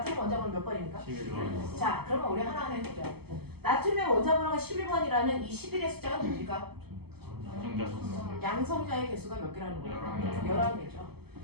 원자번호 몇 번입니까? 11번. 자, 그러면 우리 하나하나 해보자. 나트륨의 원자번호가 11번이라는 이 11의 숫자가 뭡니까? 양성자의 개수가 몇 개라는 거예요? 11개죠.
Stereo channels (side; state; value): left; late; 0.96 ms